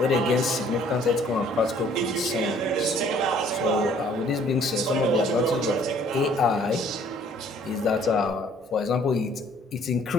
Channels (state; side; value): normal; both; correlation 0.58